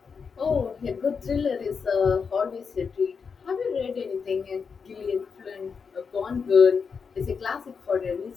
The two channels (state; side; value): quieter; right; 5.7 dB